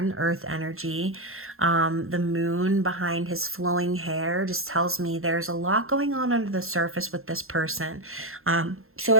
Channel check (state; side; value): late; left; 0.61 ms